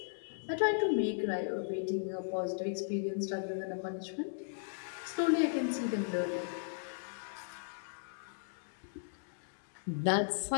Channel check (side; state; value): right; silent; digital silence